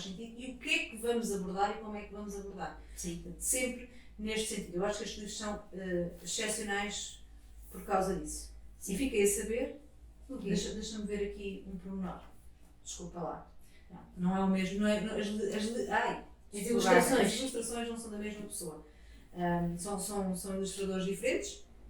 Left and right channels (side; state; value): both; identical; correlation 1.00